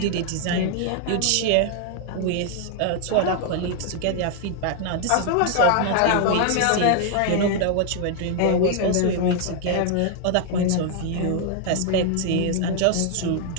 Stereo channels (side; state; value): both; different; correlation 0.00